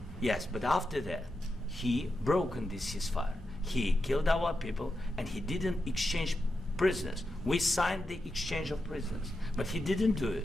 Yes, but after that, he broken this ceasefire. He killed our people and he didn't exchange prisoners. We signed the exchange of prisoners, but he didn't do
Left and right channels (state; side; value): normal; both; correlation 0.88